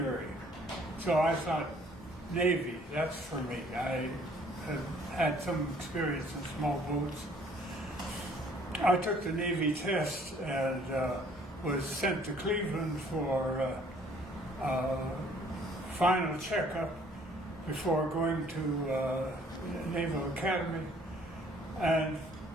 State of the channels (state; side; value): normal; both; correlation 0.59